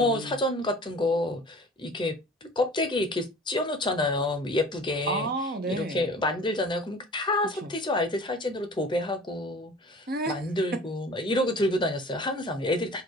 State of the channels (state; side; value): normal; both; correlation 0.43